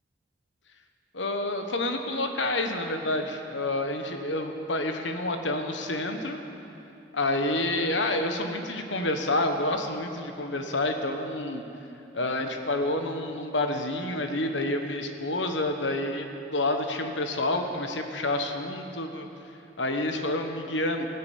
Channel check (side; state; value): both; normal; correlation -0.04